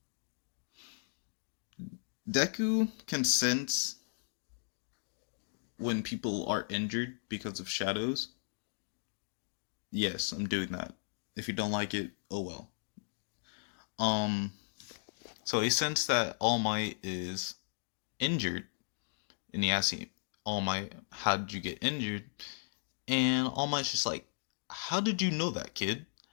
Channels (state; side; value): silent; right; digital silence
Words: Deku can sense when people are injured because of shadows. Yes, I'm doing that. If you don't like it, oh well. Um, so he sensed that All Might is injured, and he asks him, "All Might, how did you get injured?" And All Might's just like, "How did you know that, kid?"